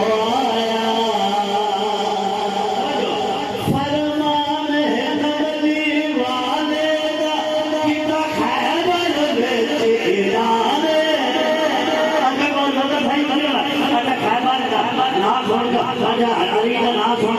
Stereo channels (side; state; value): both; identical; correlation 1.00